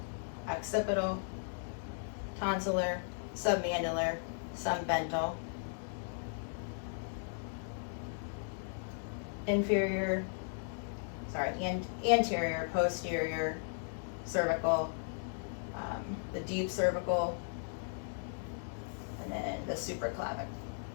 occipital, tonsillar, submandibular, submental, anterior, posterior, cervical, the deep cervical, and then the supraclavic.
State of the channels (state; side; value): silent; right; digital silence